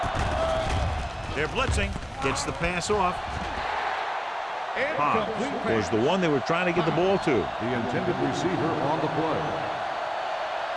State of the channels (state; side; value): identical; both; correlation 1.00